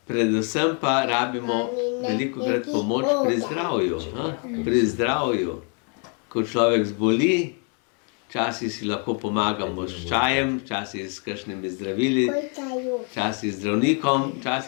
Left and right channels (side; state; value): right; quieter; 37.3 dB